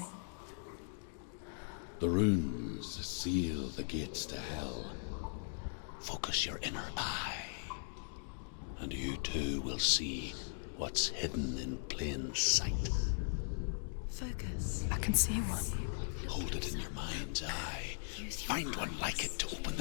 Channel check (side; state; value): right; silent; digital silence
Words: The runes seal the gates to hell. Focus your inner eye, and you too will see what's hidden in plain sight. Focus. I can see one. Hold it in your mind's eye. Find one like it to open